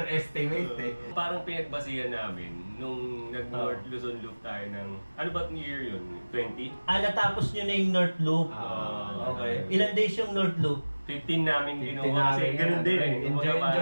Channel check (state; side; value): inverted; both; correlation -1.00